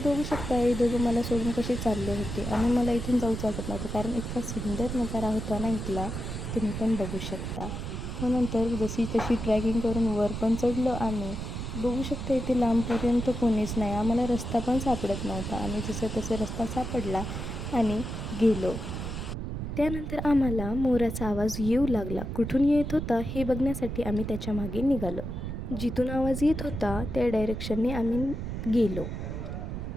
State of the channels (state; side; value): noise; right; rumble, 5 dB below the sound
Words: शकता हे दोघं मला सोडून कसे चालले होते आणि मला इथून जाऊच वाटत नव्हतं, कारण इतका सुंदर नजारा होता ना इथला, तुम्ही पण बघू शकता। मग नंतर जशी तशी ट्रॅकिंग करून वर पण चढलो आम्ही। बघू शकता इथे लांबपर्यंत कोणीच नाही, आम्हाला रस्ता पण सापडत नव्हता। आम्ही जसं तसं रस्ता सापडला आणि गेलो। त्यानंतर आम्हाला मोराचा आवाज येऊ लागला। कुठून येत होता हे बघण्यासाठी आम्ही त्याच्या मागे निघालो। जिथून आवाज येत होता त्या डायरेक्शनने आम्ही गेलो।